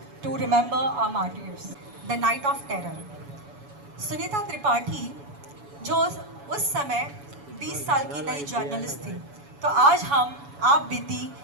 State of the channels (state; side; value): late; left; 7.0 ms